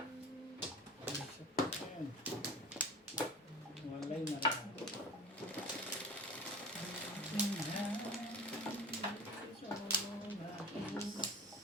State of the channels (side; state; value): both; normal; correlation 0.36